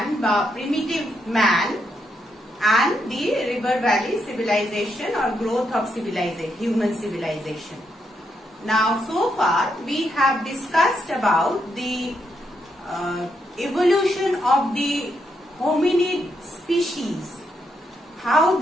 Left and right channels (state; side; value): normal; both; correlation 0.79